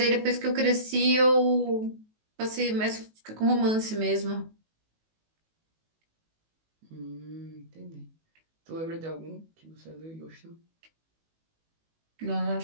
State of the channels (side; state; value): left; late; 19 ms